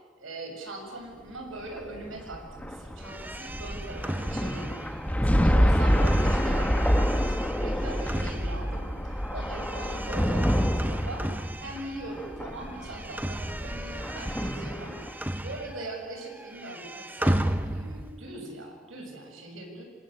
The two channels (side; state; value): both; normal; correlation 0.91